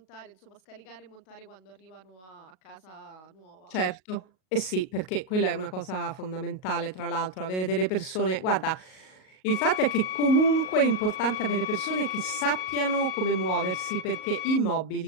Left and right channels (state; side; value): late; right; 38 ms